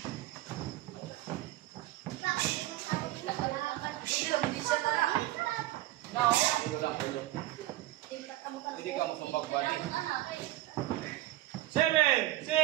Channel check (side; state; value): left; quieter; 16.3 dB